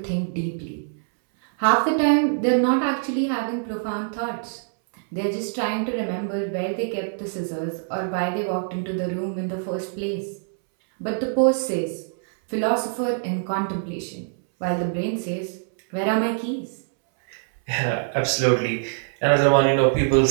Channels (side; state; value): left; silent; 62 dB below the other